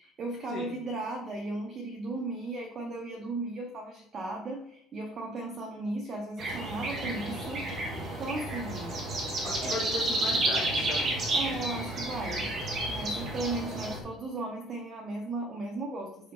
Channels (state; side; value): normal; both; correlation 0.57